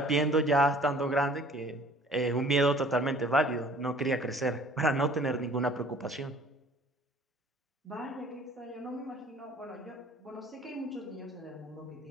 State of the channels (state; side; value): normal; both; correlation 0.52